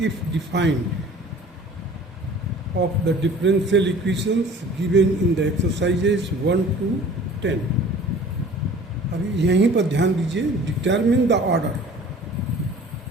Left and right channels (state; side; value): normal; both; correlation 0.46